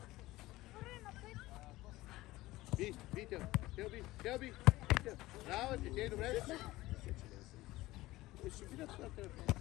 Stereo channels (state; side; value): quieter; right; 18.0 dB